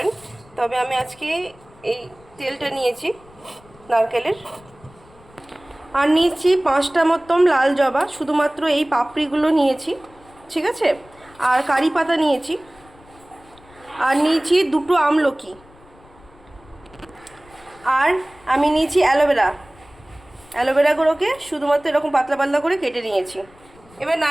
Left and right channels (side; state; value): left; noise; rumble, 26 dB below the sound